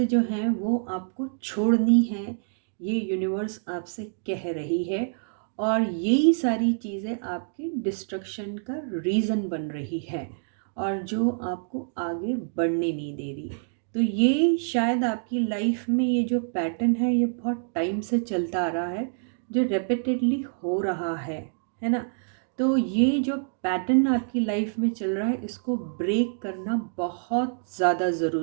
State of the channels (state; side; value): silent; left; digital silence